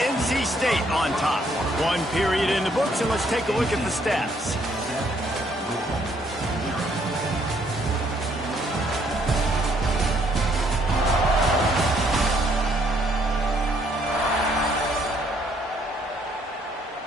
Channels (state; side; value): normal; both; correlation 0.67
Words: NC State on top. 1 period in the books, and let's take a look at the stats.